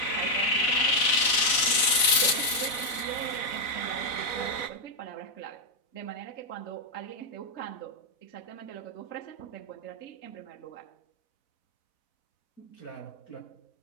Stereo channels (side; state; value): right; late; 4.0 ms